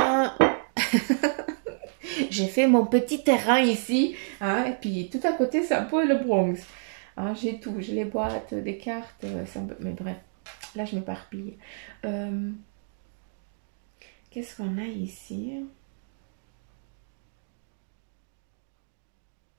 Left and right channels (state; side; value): silent; left; digital silence